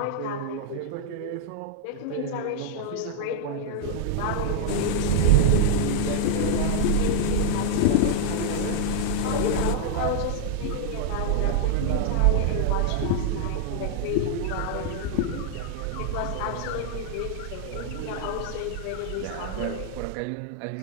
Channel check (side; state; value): both; different; correlation 0.00